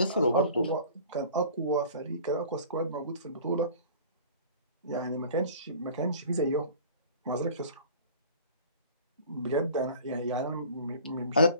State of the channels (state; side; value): inverted; both; correlation -0.44